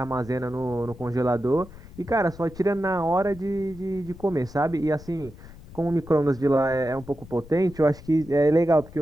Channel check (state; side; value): noise; left; rumble, 18 dB below the sound